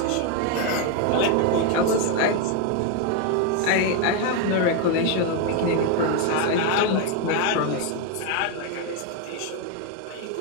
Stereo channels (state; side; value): different; both; correlation 0.02